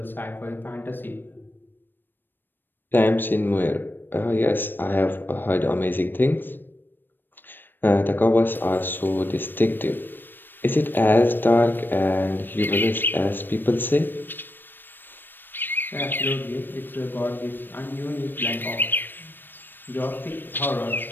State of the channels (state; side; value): late; right; 0.094 ms